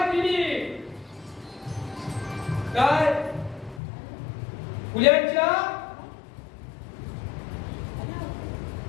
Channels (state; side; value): drops out; right; at 3.8 s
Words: केली. काय पुण्याच्या